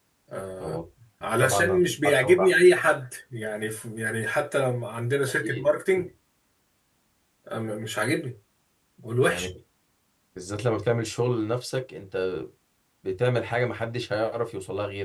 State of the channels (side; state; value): both; identical; correlation 1.00